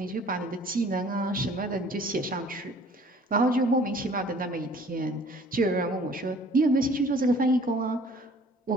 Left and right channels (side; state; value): both; normal; correlation 0.53